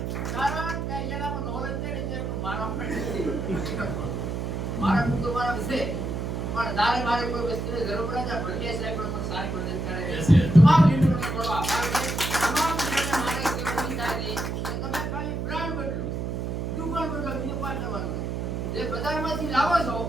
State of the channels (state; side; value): noise; right; hum, 3 dB below the sound